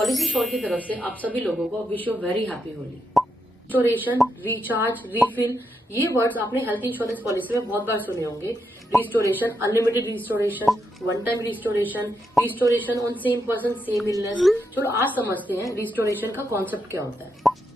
Policy sure की तरफ से आप सभी लोगों को wish you very happy Holi. Restoration, recharge, refill, ये वर्ड्स आपने हेल्थ इंश्योरेंस पॉलिसी में बहुत बार सुने होंगे। Restoration, unlimited restoration, one time restoration, restoration on same person same illness. चलो आज समझते हैं रिस्टोरेशन का कॉन्सेप्ट क्या होता है।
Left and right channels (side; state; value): both; normal; correlation 0.82